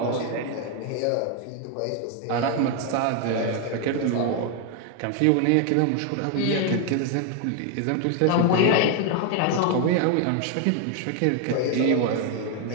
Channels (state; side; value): different; both; correlation 0.01